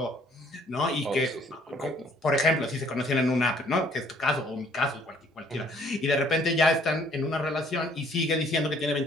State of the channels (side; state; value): both; normal; correlation 0.61